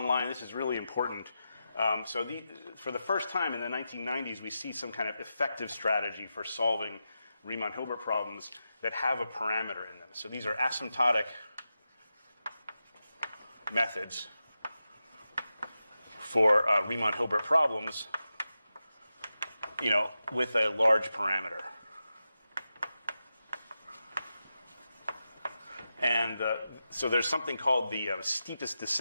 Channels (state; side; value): inverted; both; correlation -0.90